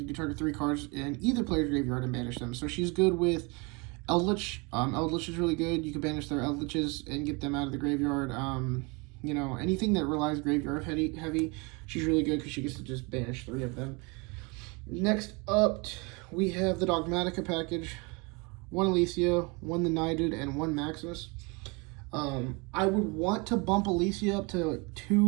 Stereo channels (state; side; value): quieter; left; 28.9 dB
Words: can target 3 cards in either player's graveyard and banish them. So she's good with Eldritch. Eldritch is really good. You can banish their Eldritches and get them out of the graveyard. Anything that relies graveyard heavy, she's really good because she gets to just banish 3 of them. Next up, we have the Dogmatica package. 1 Alicia, 1 the Knighted, and 1 Maximus. I would want to bump Alicia up to